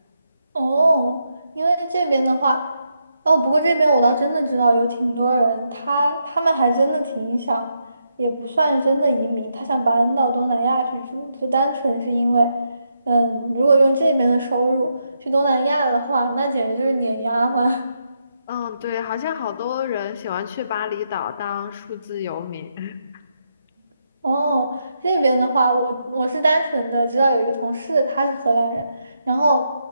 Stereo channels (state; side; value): inverted; both; correlation -0.81